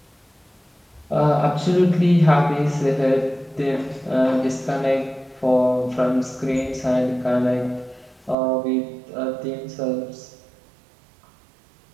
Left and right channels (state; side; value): drops out; left; at 8.3 s